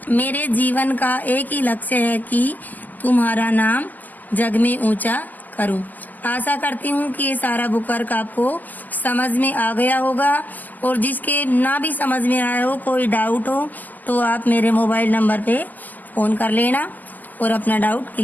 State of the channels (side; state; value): right; late; 0.083 ms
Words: मेरे जीवन का एक ही लक्ष्य है कि तुम्हारा नाम जग में ऊंचा करूं। आशा करती हूँ कि ये सारा बुक वर्क आपको समझ में आ गया होगा, और जिसके ना भी समझ में आया हो, कोई डाउट हो, तो आप मेरे मोबाइल नंबर पे फ़ोन कर लेना और अपना डाउट